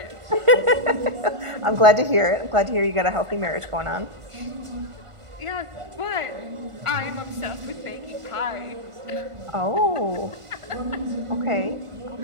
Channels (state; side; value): late; left; 1.5 ms